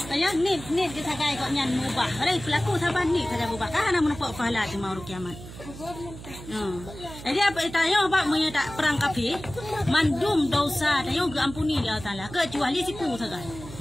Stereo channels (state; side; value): noise; right; hum, 14 dB below the sound